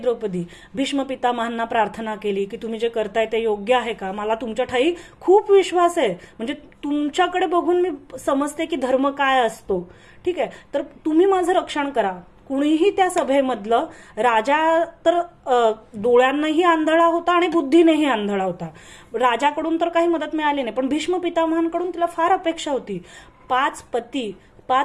भीष्म पितामहांना प्रार्थना केली की तुम्ही जे करताय ते योग्य आहे का? मला तुमच्या ठाई खूप विश्वास आहे, म्हणजे तुमच्याकडे बघून मी समजते की धर्म काय असतो. ठीक आहे, तर तुम्ही माझं रक्षण करा. कुणीही त्या सभेमधलं, राजा तर डोळ्यांनाही आंधळा होता आणि बुद्धीनेही आंधळा होता, राजाकडून तर काही मदत मिळाली नाही, पण भीष्म पितामहांकडून तिला फार अपेक्षा होती. 5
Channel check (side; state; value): both; identical; correlation 1.00